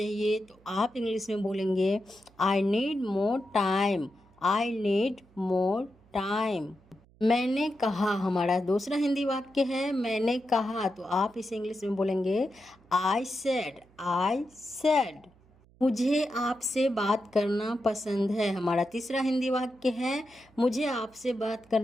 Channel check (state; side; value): noise; right; hum, 29 dB below the sound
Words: तो आप इंग्लिश में बोलेंगे I need more time. I need more time. मैंने कहा, हमारा दूसरा हिंदी वाक्य है मैंने कहा, तो आप इसे इंग्लिश में बोलेंगे आई सेड। I said. मुझे आपसे बात करना पसंद है। हमारा तीसरा हिंदी वाक्य है मुझे आपसे बात